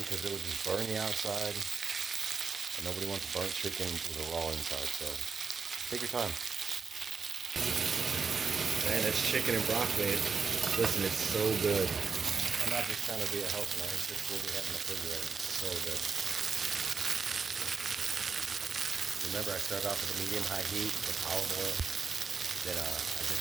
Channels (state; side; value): quieter; left; 5.3 dB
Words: because it will just burn the outside. And nobody wants burnt chicken with a raw inside, so take your time. Man, it's chicken and broccoli. Listen, it's so good. I'm not just trying to be a health man, it's just what we have in the refrigerator. It's so good. Remember, I started off with a medium-high heat with olive oil. Then I did